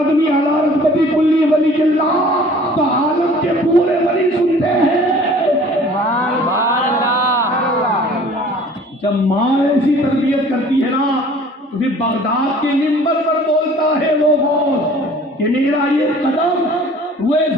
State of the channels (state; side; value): normal; both; correlation 0.50